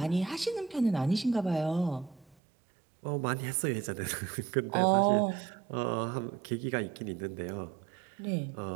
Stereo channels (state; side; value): drops out; left; at 2.4 s